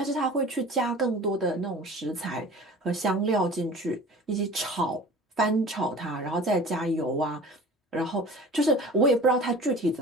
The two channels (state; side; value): normal; both; correlation 0.41